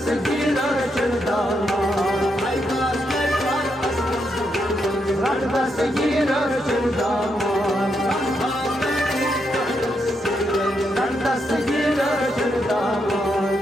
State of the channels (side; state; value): both; normal; correlation 0.80